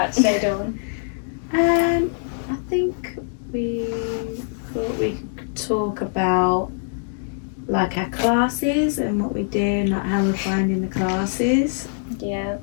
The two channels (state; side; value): silent; right; digital silence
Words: today, Dawn? I think we thought we could talk about like our classes and what we do and like how we're finding the classes. Yeah.